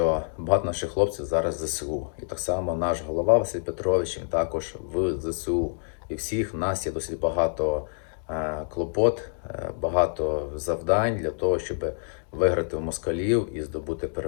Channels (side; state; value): right; silent; digital silence